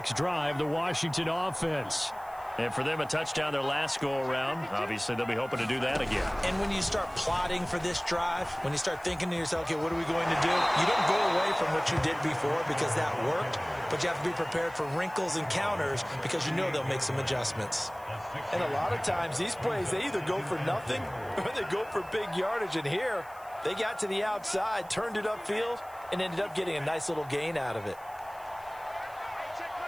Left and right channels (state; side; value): noise; right; hiss, 24 dB below the sound